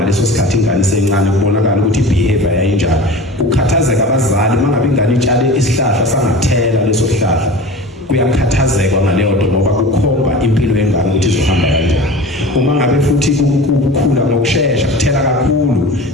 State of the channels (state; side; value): normal; both; correlation 0.36